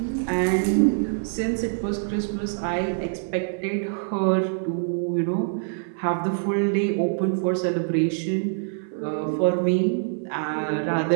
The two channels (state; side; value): silent; left; 62 dB below the other